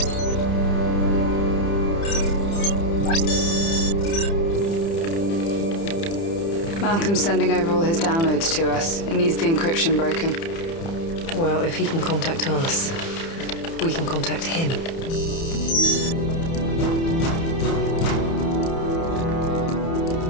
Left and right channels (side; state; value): right; late; 30 ms